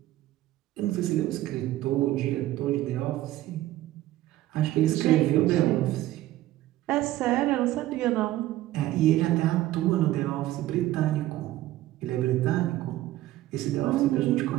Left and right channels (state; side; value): quieter; left; 15.2 dB